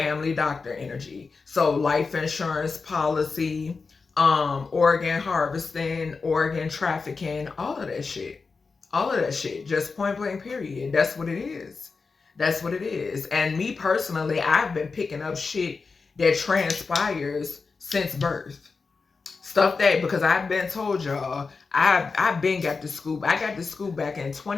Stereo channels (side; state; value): right; quieter; 4.6 dB